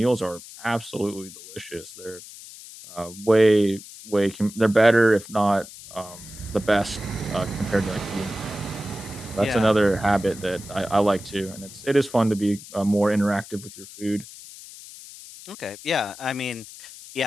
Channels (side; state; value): left; noise; hiss, 16 dB below the sound